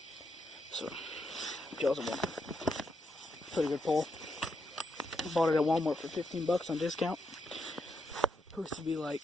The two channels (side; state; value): both; normal; correlation 0.81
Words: So, jaws of one. Pretty good pole. Bought it at Walmart for 15 bucks on discount. Supposed to be